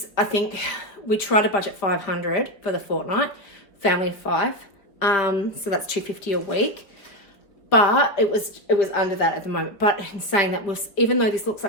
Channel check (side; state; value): right; late; 4.8 ms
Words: I think, we try to budget $500 for the fortnight, family of 5. So that's $250 a week. But it was under that at the moment. But in saying that, even though this looks